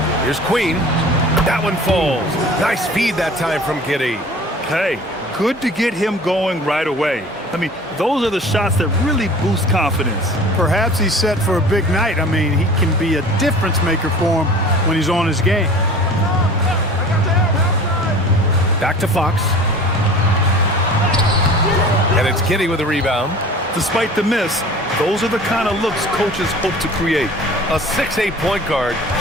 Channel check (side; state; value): both; normal; correlation 0.43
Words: Here's Queen. That one falls. Nice feed that time from Giddey. Hey, good to get him going right away. I mean, those are the shots that really boost confidence. Perhaps he's set for a big night. I mean, he can be a difference maker for him when he's on his game. Back to Fox. And it's Giddey with a rebound. Despite the miss, those are the kind of looks coaches hope to create. A 6'8" point guard,